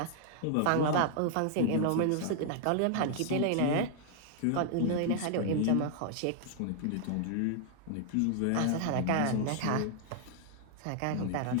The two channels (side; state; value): both; different; correlation 0.00